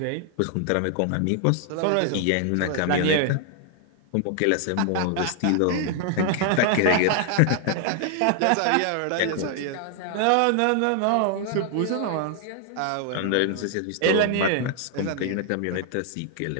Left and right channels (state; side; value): different; both; correlation 0.00